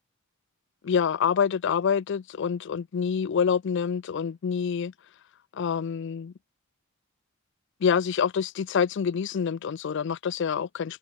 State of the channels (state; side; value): quieter; right; 6.5 dB